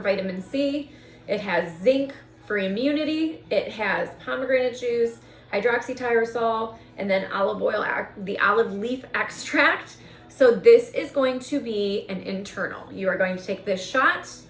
vitamin C. It has zinc for immunity. It has pomegranate juice, hydroxytyrosol, and then olive oil, the olive leaf extract. So this is going to be an internal. You are going to take this shot.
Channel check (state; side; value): identical; both; correlation 1.00